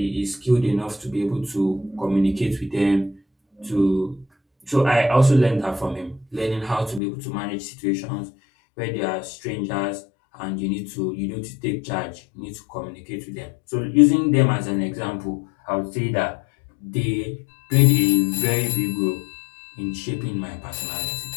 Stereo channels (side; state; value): right; drops out; at 7.0 s